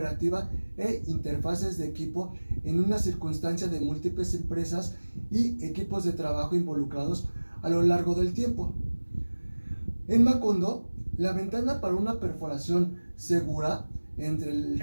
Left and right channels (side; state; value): both; inverted; correlation -1.00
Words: e interfaces de equipo en una circunstancia de múltiples empresas y equipos de trabajo involucrados a lo largo del tiempo. En Macondo, la ventana para una perforación segura entre el